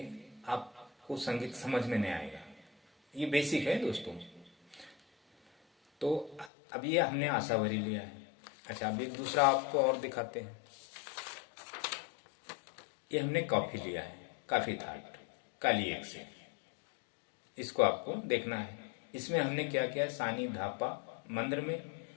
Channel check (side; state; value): right; drops out; at 6.5 s